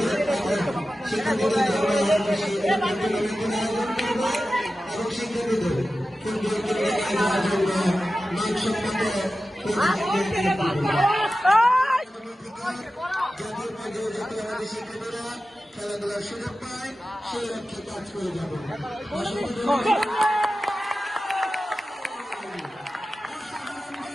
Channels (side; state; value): both; normal; correlation 0.94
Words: এবং শিক্ষার্থীদের আয়োজন করবে এবং শিক্ষার্থীদের ফুটবল খেলার জন্য মানসম্মত শিক্ষার্থীরা খেলাধুলার সুযোগ পায় সেই লক্ষ্যে কাজ করে যাবে।